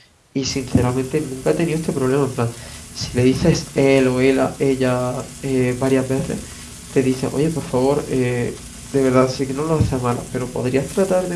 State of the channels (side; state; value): both; identical; correlation 1.00